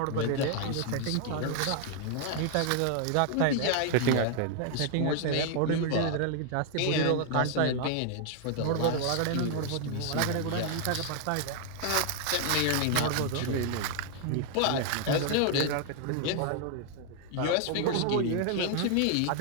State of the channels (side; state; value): both; different; correlation 0.00